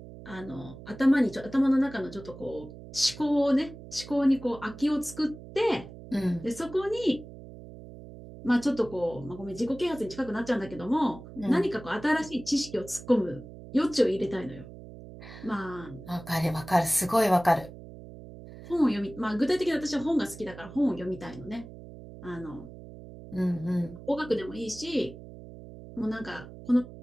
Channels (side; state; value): right; noise; hum, 15 dB below the sound